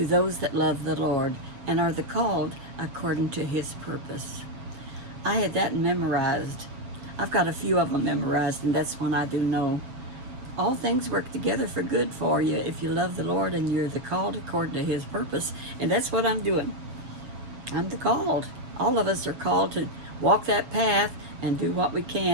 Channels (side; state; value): left; late; 7.8 ms